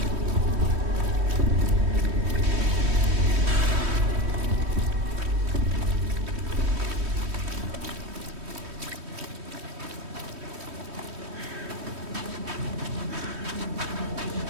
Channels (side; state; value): left; late; 3.1 ms